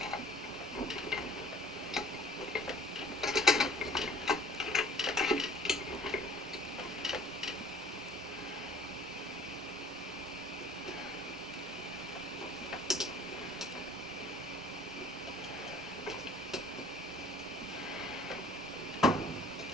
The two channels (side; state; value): both; normal; correlation 0.50